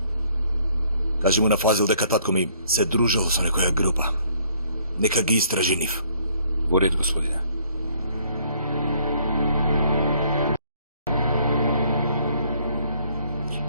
Кажи му на Фазил дека татко ми се дружал со некоја група. Нека ги истражи нив. Во ред, господине.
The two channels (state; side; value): inverted; both; correlation -0.64